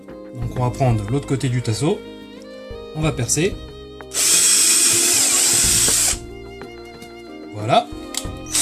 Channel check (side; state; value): both; identical; correlation 1.00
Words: Donc on va prendre l'autre côté du tasseau, on va percer. Voilà.